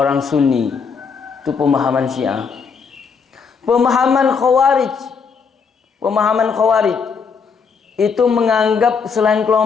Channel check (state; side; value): quieter; right; 5.7 dB